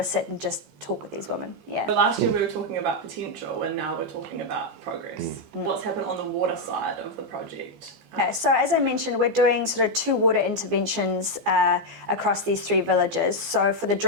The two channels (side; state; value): left; late; 15 ms